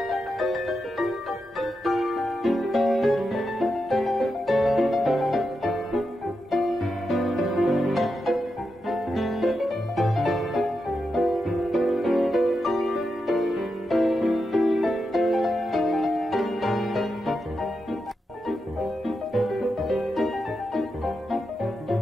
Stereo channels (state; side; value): normal; both; correlation 0.87